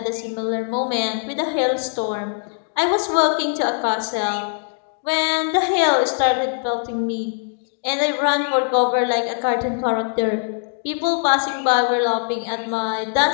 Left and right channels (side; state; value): right; silent; digital silence